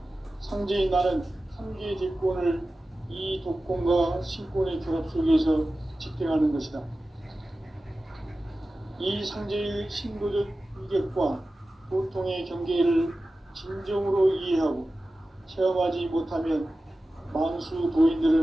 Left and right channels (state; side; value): normal; both; correlation 0.95